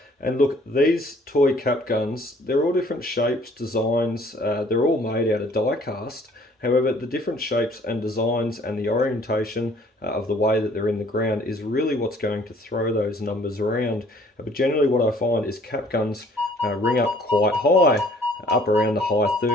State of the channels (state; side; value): normal; both; correlation 0.57